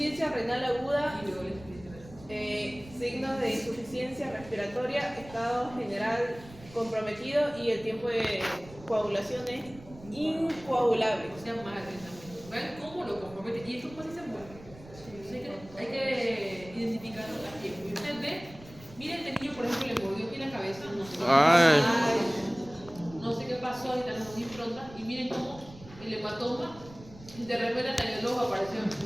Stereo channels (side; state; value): right; noise; rumble, 19 dB below the sound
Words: renal aguda, Y luego la insuficiencia. signos de insuficiencia respiratoria, estado general comprometido y el tiempo de coagulación es incoagulable. O sea, más de 30 minutos. ¿Ven cómo lo compromete? Y esto pues se mueve. Hay que identificarlo a tiempo. Y usted ve, miren, este niño, por ejemplo, le mordió aquí la cabeza. No sé qué pasó, ahorita las dos improntas. Y miren cómo el hematoma, de repente en el ojo apareció un